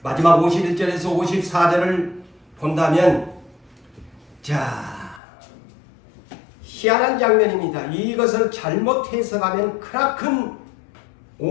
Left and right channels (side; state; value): right; drops out; at 5.2 s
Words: 마지막 51절에서 54절을 본다면 희한한 장면입니다. 이것을 잘못 해석하면 크나큰